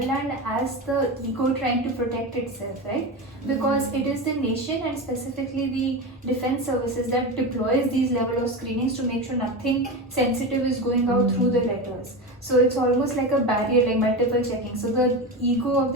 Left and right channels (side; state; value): both; normal; correlation 0.21